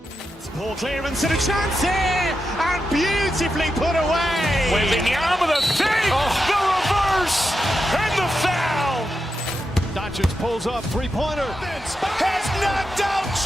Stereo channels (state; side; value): normal; both; correlation 0.88